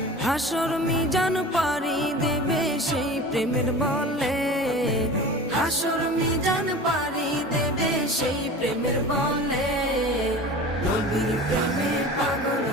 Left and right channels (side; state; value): both; normal; correlation 0.36